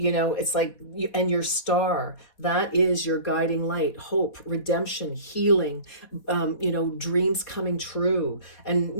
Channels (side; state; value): right; late; 4.2 ms